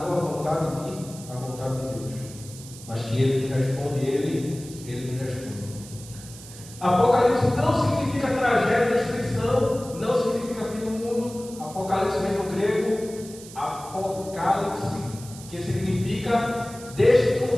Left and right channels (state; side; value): noise; right; hiss, 16 dB below the sound